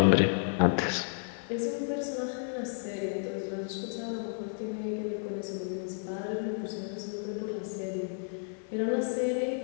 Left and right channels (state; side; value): silent; right; 56 dB below the other